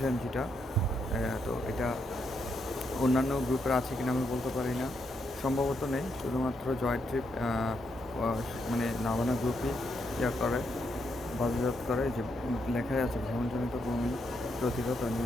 mgটা। তো এটা অন্যান্য গ্রুপের আছে কিনা আমি বলতে পারি না, সম্ভবত নেই। শুধুমাত্র জয় ট্রিপ মানে নাভানা গ্রুপই করে, বাজারজাত করে। যে লেখাই আছে ভ্রমণজনিত বমি প্রতিরোধ ও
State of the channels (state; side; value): normal; both; correlation 0.79